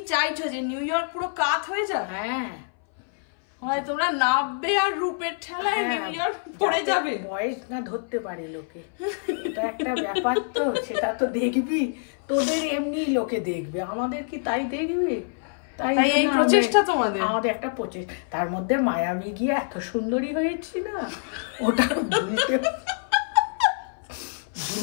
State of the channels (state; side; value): silent; right; 60 dB below the other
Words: চাইছো যে নিউ ইয়র্ক পুরো কাত হয়ে যাক? হ্যাঁ, হয় তোমরা নাববে আর রূপের ঠেলায় নিউ ইয়র্ক পড়ে যাবে। বয়স না ধরতে পারে লোকে, এটা একটা ব্যাপার তো, সেটা তো দেখবি। তোদের এমনি লোকে দেখবে, আমাদের কি তাই দেখবে? তাই এই জন্য প্রচেষ্টা তোমাদের। আমাদের একটা প্রচেষ্টা। তার মধ্যে মায়ামি গিয়ে এত সুন্দরী হয়েছি না, ওটা